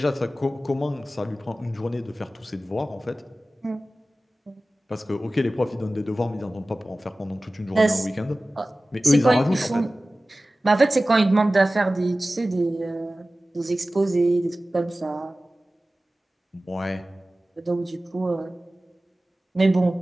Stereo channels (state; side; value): normal; both; correlation 0.97